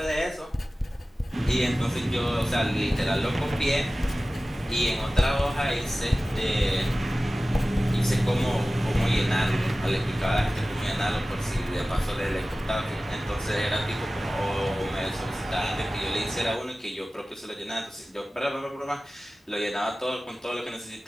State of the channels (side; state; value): both; normal; correlation 0.96